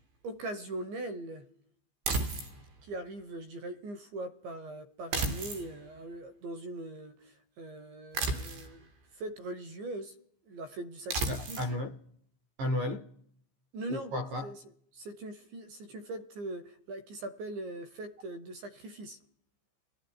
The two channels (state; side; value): late; left; 15 ms